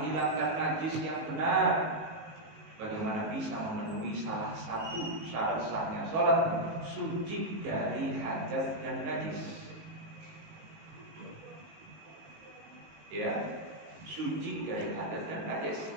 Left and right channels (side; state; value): left; late; 19 ms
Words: najis yang benar, bagaimana bisa memenuhi salah satu syarat sahnya sholat? Suci dari hadas dan najis. Ya, suci dari hadas dan najis.